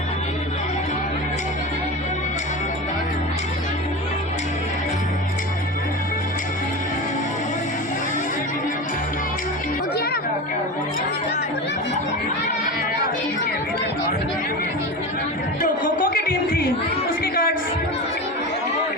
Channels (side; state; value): both; normal; correlation 0.26